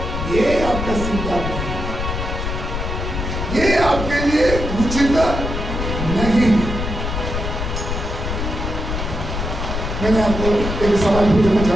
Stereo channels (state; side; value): noise; left; rumble, 4 dB below the sound